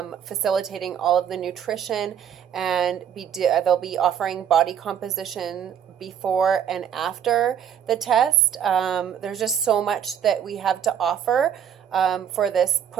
facilitating all of the nutrition, and they'll be offering body composition before and after the test. There's just so much that we have to offer for this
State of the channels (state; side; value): quieter; left; 8.9 dB